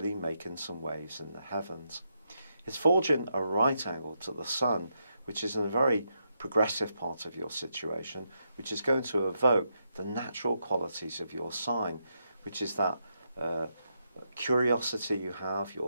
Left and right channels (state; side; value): inverted; both; correlation -0.81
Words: making some waves in the heavens. It's forging a right angle to the Sun, which is in a very progressive part of your situation, which is going to evoke the natural qualities of your sign, which is that curiosity you have,